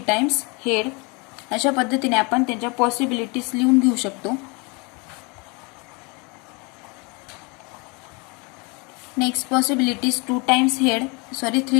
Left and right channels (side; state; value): right; quieter; 29.8 dB